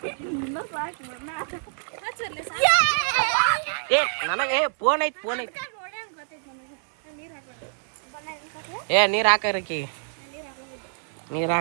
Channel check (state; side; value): silent; left; 61 dB below the other